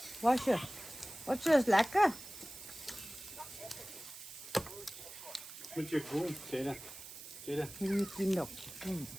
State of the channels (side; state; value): right; noise; hiss, 13 dB below the sound